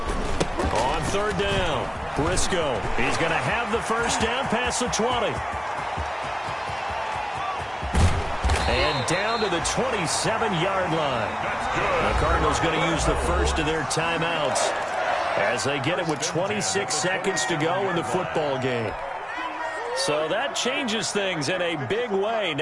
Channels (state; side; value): identical; both; correlation 1.00